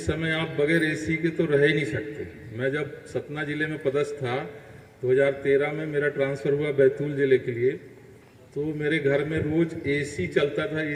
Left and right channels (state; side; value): identical; both; correlation 1.00